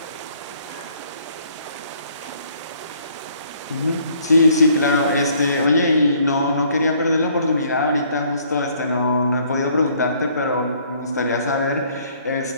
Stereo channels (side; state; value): both; inverted; correlation -0.62